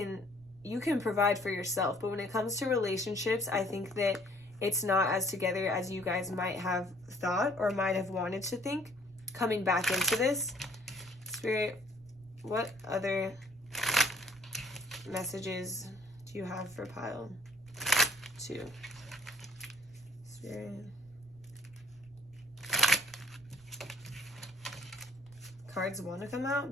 provide for yourself. But when it comes to relationships, I think that it's not as together as you guys might have thought or might have wanted to think coming back into this. Spirit, what other messages do you have for pile 2? Spirit. Cards want to come out,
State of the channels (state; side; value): noise; right; rumble, 26 dB below the sound